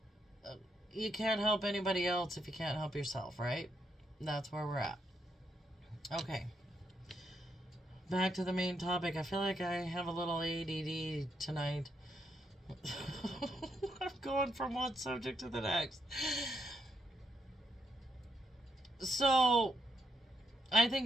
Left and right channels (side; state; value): both; normal; correlation 0.78